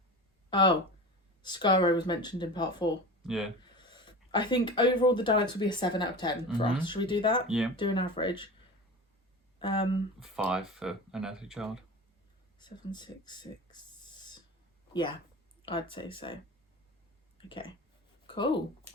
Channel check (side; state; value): both; normal; correlation 0.32